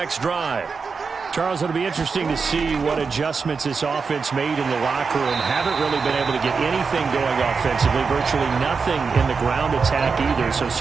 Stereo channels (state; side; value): quieter; left; 5.1 dB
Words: drive. Charles, it'll be interesting to see what adjustments this offense made in the locker room. Haven't really been able to get anything going offensively, virtually nothing in the ground attack either. So